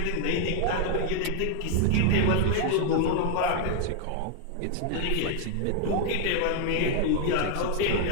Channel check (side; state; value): both; different; correlation 0.00